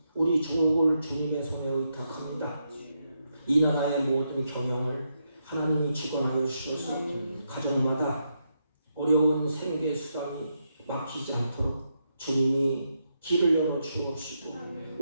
우리 조국을 주님의 손에 의탁합니다. 이 나라의 모든 경영을 하나님이 주관하여 주셔서 가정마다 어려운 생계 수단이 막히지 않도록 주님이 길을 열어 주옵시고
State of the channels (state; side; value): inverted; both; correlation -0.82